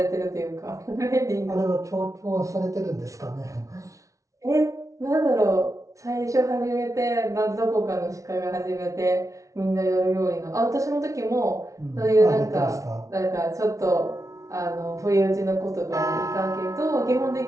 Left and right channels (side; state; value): left; late; 0.16 ms